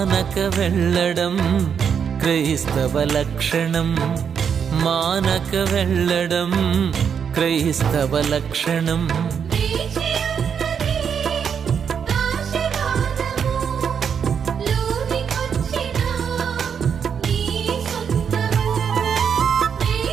వెళ్ళడం క్రైస్తవ లక్షణం మానక వెళ్ళడం క్రైస్తవ లక్షణం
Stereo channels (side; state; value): left; quieter; 7.3 dB